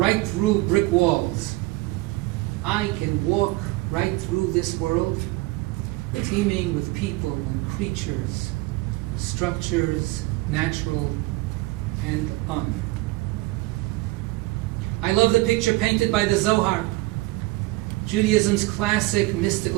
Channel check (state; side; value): quieter; left; 20.7 dB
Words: through brick walls, I can walk right through this world, teeming with people and creatures, structures, natural and un. I love the picture painted by the Zohar, Judaism's classic